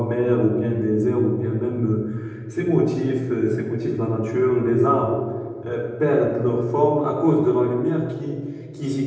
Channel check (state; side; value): identical; both; correlation 1.00